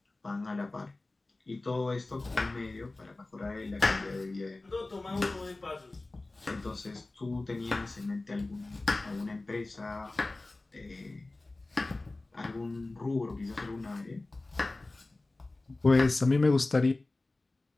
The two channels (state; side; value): quieter; right; 3.1 dB